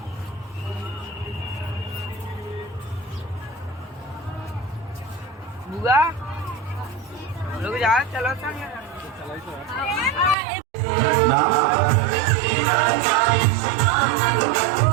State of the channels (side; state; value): left; drops out; at 10.4 s